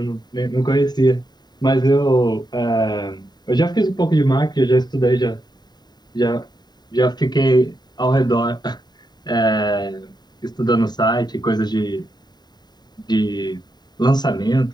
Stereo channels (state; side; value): late; right; 0.20 ms